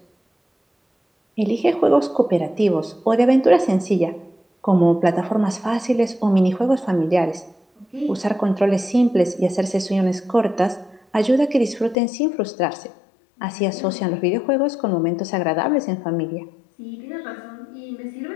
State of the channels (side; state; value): right; drops out; at 12.0 s